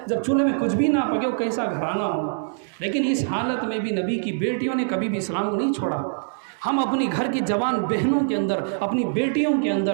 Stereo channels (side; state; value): left; silent; digital silence